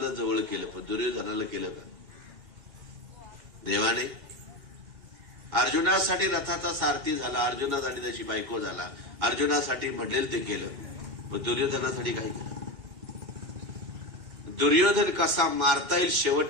जवळ केलं, पण दुर्योधनाला केलं का? देवाने अर्जुनासाठी रथाचा सारथी झाला, अर्जुनासाठी त्याची बायको झाला, अर्जुनासाठी म्हणेल ते केलं, पण दुर्योधनासाठी काय केलं? दुर्योधन कसा मारता येईल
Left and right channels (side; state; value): left; late; 2.4 ms